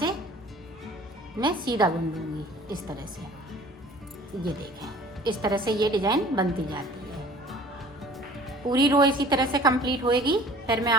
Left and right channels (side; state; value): both; normal; correlation 0.47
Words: मैं सीधा बुन दूंगी इस तरह से। ये देखें, इस तरह से ये डिजाइन बनती जाती है। पूरी रो इसी तरह से कंप्लीट होएगी, फिर मैं